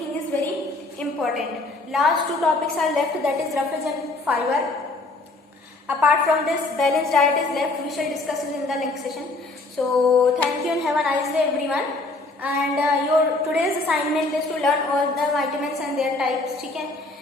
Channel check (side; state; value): right; quieter; 3.2 dB